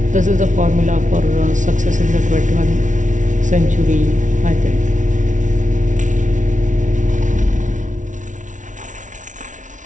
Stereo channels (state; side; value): late; left; 0.37 ms